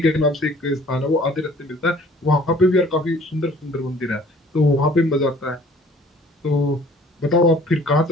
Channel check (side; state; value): both; normal; correlation 0.54